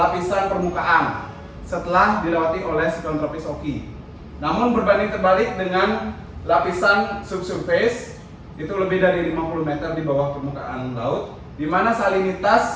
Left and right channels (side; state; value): both; identical; correlation 1.00